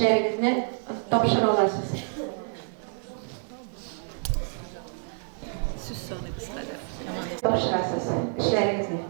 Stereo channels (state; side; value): silent; left; 59 dB below the other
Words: topşır olasınız. Söz sonu kısaca. Topşırasınız işlerinizni.